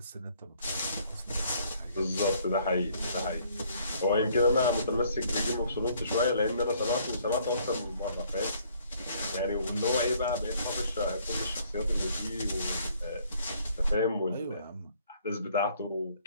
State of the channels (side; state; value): both; inverted; correlation -0.62